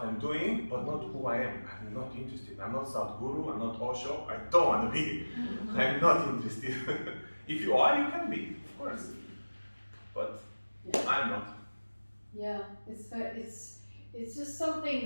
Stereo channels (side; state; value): both; inverted; correlation -1.00